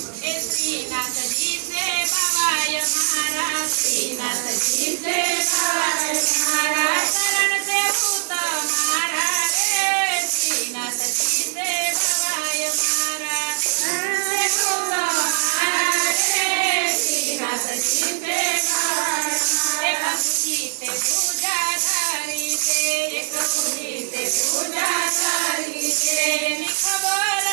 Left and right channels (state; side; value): silent; left; 62 dB below the other